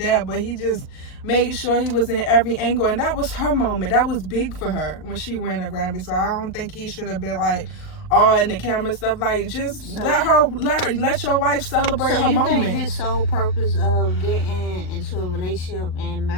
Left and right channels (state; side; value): late; right; 38 ms